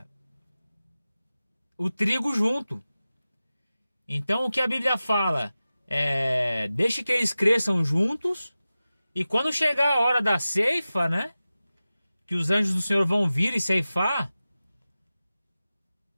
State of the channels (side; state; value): both; inverted; correlation -0.95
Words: o trigo junto. Então o que a Bíblia fala? Deixe que eles cresçam juntos, e quando chegar a hora da ceifa, né? Que os anjos do Senhor vão vir e ceifar,